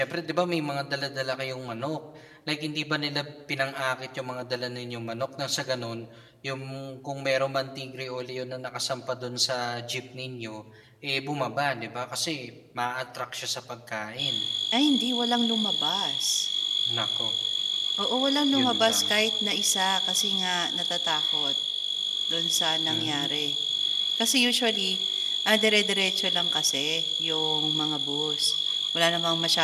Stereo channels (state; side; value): identical; both; correlation 1.00